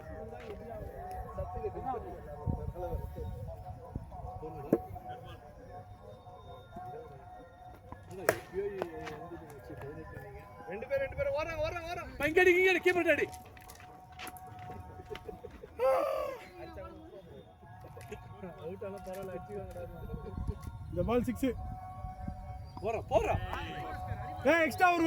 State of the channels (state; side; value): identical; both; correlation 1.00